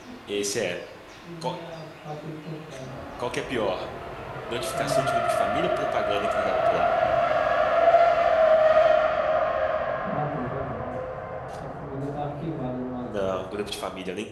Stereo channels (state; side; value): identical; both; correlation 1.00